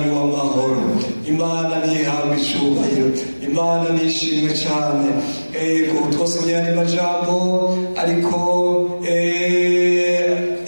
w'amahoro. Imana nihabwe icyubahiro, Imana nishimwe cyane. Ego twasomye andi majambo, ariko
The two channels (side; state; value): both; inverted; correlation -1.00